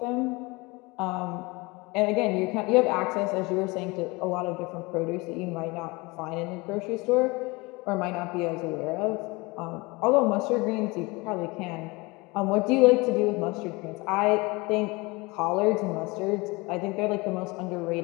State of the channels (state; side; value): quieter; right; 24.9 dB